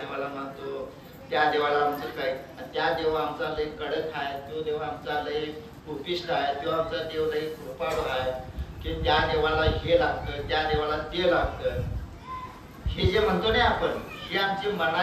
मानतो, त्या देवाला आमचं काय, त्या देवा आमचा लय कडक आहे, तो देव आमचा लय उपिष्ट आहे, तो आमचा देव लय कृपाळू आहे, की त्या देवाला हे लागतं, त्या देवाला ते लागतं. हे जे म्हणतो ना आपण, ही आमची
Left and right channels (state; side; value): identical; both; correlation 1.00